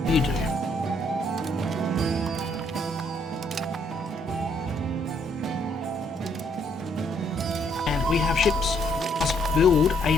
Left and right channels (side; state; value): both; normal; correlation 0.69